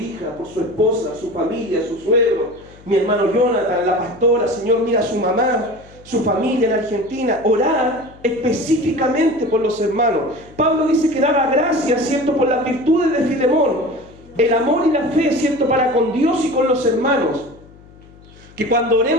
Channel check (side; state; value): left; noise; hum, 23 dB below the sound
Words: por su esposa, su familia, su suegro, mi hermano Jonathan, la pastora, Señor, mira a su mamá, su familia en Argentina. Orar específicamente por los hermanos. Pablo dice que daba gracias, ¿cierto?, por las virtudes de Filemón, el amor y la fe, ¿cierto?, para con Dios y con los hermanos. Que cuando